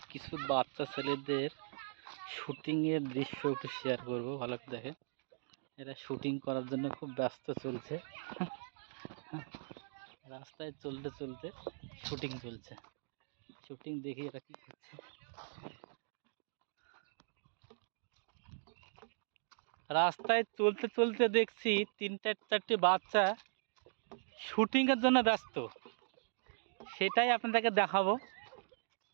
কিছু বাচ্চা ছেলেদের শুটিংয়ের দৃশ্য একটু শেয়ার করবো, ভালো করে দেখেন। এরা শুটিং করার জন্য খুব ব্যস্ত চলছে। রাস্তায় চলতে চলতে শুটিং চলছে। শুটিং দেখি এরা কি করছে। রাস্তায় চলতে চলতে দেখছি 3-4টি বাচ্চা শুটিংয়ের জন্য ব্যস্ত, সেটাই আপনাদেরকে দেখাবো।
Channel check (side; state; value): left; silent; digital silence